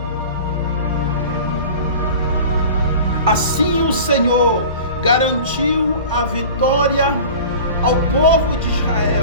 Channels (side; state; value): both; inverted; correlation -0.39